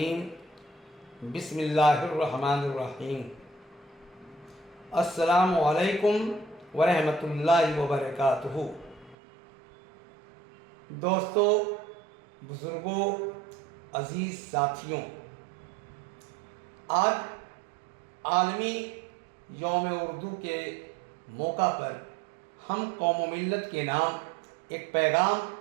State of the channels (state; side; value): drops out; left; at 9.2 s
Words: بسم اللہ الرحمن الرحیم السلام علیکم ورحمۃ اللہ وبرکاتہ۔ دوستو، بزرگوں، عزیز ساتھیوں، آج عالمی یوم اردو کے موقع پر ہم قوم و ملت کے نام ایک پیغام